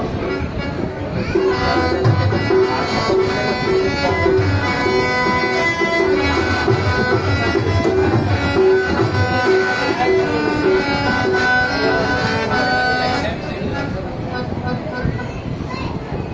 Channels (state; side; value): identical; both; correlation 1.00